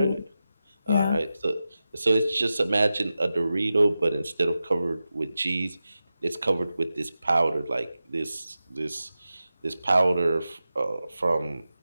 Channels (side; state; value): both; inverted; correlation -0.93